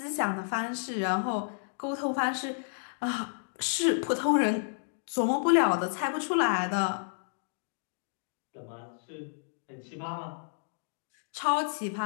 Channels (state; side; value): silent; right; digital silence